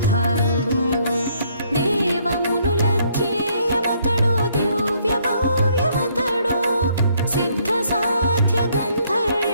దేవమునుల ధ్యేయమతడు దివ్య భవ్యమతడు, సిద్ధ సాధ్య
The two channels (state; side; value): inverted; both; correlation -0.67